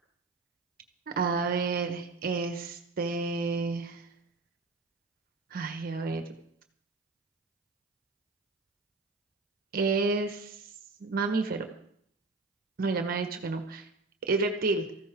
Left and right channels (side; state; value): left; quieter; 3.6 dB